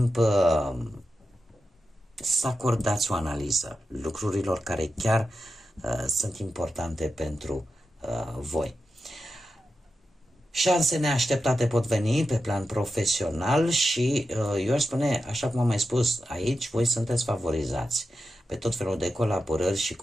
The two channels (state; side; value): normal; both; correlation 0.90